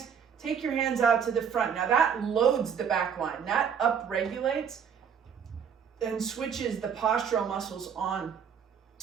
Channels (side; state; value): left; quieter; 7.4 dB